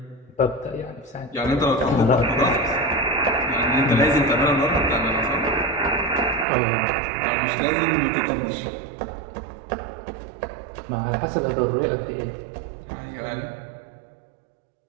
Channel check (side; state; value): left; drops out; at 6.5 s